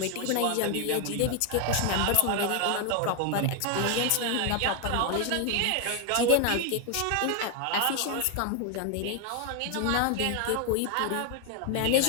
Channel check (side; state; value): both; different; correlation 0.00